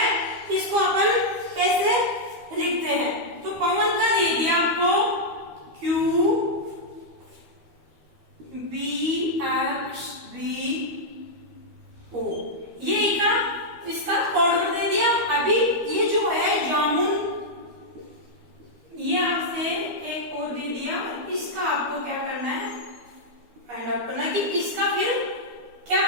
इसको अपन कैसे लिखते हैं। तो पवन का दे दिया आपको Q B X B O, ये इसका कोड वर्ड दे दिया। अभी ये जो है जामुन, ये आपसे एक और दे दिया, इसका आपको क्या करना है, फाइंड आउट करना कि इसका फिर क्या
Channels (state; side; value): late; left; 12 ms